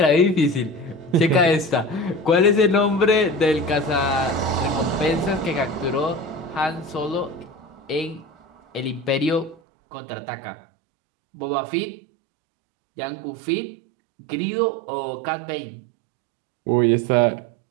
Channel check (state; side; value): drops out; left; at 9.6 s